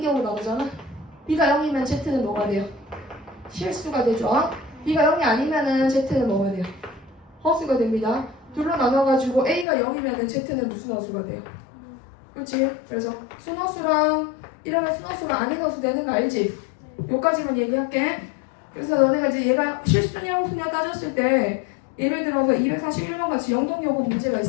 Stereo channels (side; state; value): right; drops out; at 9.7 s